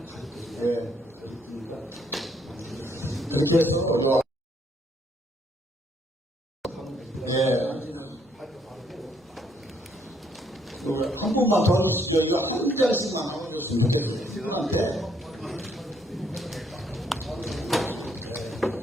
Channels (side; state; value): both; normal; correlation 0.69